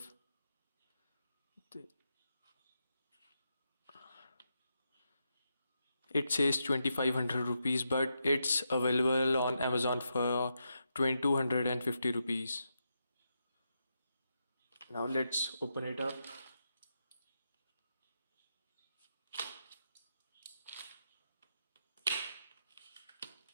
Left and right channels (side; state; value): both; inverted; correlation -0.85